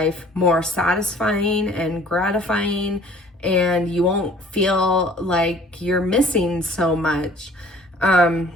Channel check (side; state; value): both; normal; correlation 0.52